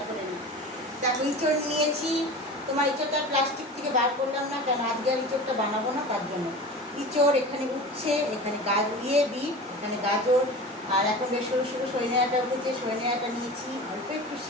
করে নিই। দেখো ইঁচড় নিয়েছি। তোমার ইঁচড়টা প্লাস্টিক থেকে বার করলাম না কেন, আজকে আর ইঁচড়টা বানাবো না তার জন্য। ইঁচড় এখানে উঠছে, এখানে বিট, এখানে গাজর, আর এখন বেশ সরু সরু সজনে উঠেছে, সজনে নিয়েছি, অল্প একটু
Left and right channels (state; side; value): normal; both; correlation 0.33